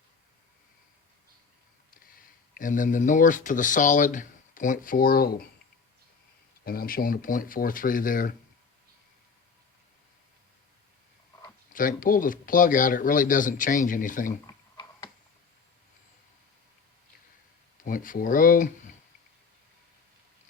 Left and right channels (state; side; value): quieter; right; 5.3 dB